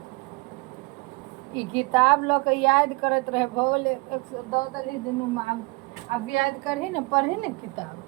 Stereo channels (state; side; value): quieter; left; 27.3 dB